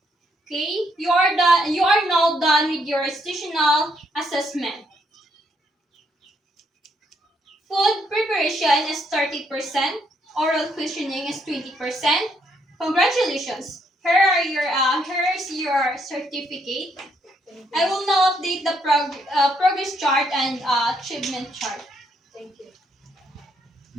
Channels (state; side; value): normal; both; correlation 0.73